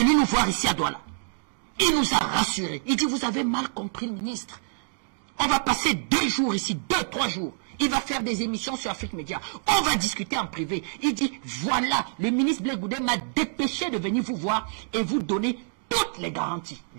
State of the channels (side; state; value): left; silent; 61 dB below the other